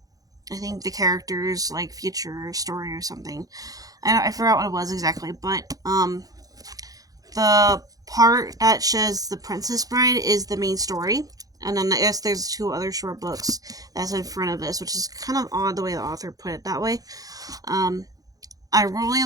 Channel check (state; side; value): late; left; 0.17 ms